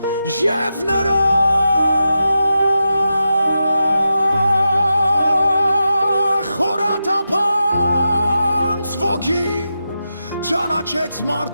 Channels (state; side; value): inverted; both; correlation -0.89